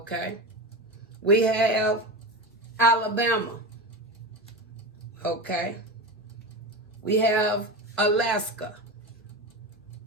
We have Alabama, okay. We have Alaska.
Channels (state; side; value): normal; both; correlation 0.22